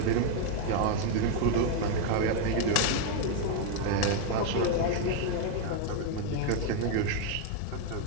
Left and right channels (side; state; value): both; different; correlation 0.01